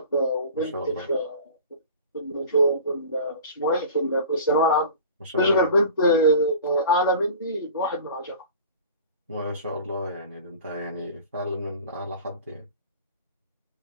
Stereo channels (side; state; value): both; inverted; correlation -0.41